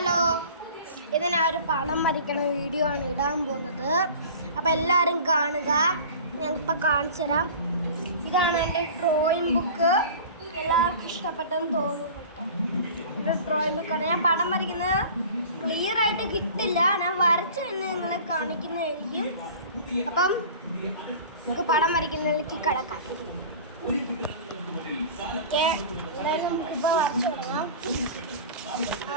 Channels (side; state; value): both; inverted; correlation -0.40